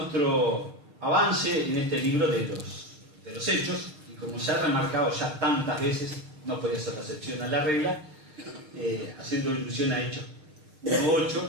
avance en este libro de los Hechos, y como se ha remarcado ya tantas veces, no podía ser la excepción a la regla, haciendo ilusión a Hechos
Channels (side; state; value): left; late; 6.5 ms